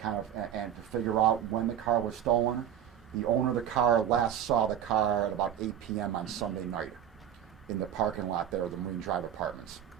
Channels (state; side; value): quieter; left; 10.0 dB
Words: kind of and to figure out when the car was stolen. The owner of the car last saw the car at about 8 p.m. on Sunday night in the parking lot there of the Marine Drive Apartments.